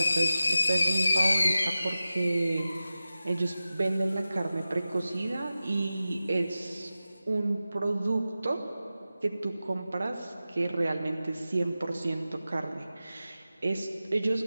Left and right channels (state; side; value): inverted; both; correlation -0.94